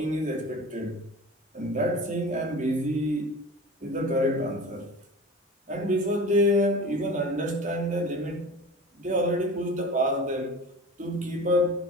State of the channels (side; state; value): both; normal; correlation 0.36